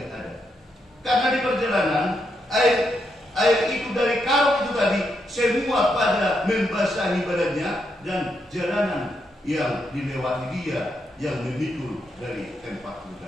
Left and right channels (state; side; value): normal; both; correlation 0.80